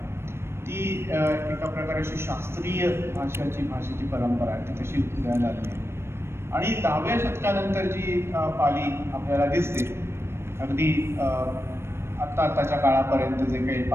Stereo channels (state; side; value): late; left; 0.12 ms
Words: ती एका प्रकारे अशी शास्त्रीय भाषेची परंपरा आहे, ती तशी उदयाला आली आहे. आणि 10व्या शतकानंतर जी पाली आपल्याला दिसते, अगदी आत्ताच्या काळापर्यंत जे काही